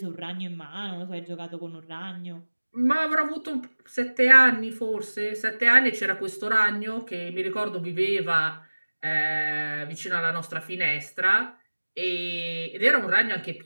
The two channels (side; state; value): both; inverted; correlation -1.00